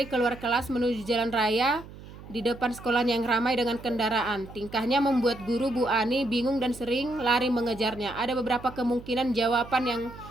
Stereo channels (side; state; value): right; noise; hum, 16 dB below the sound